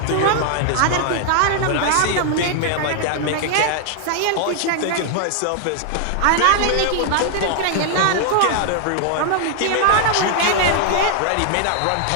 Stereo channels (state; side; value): different; both; correlation 0.00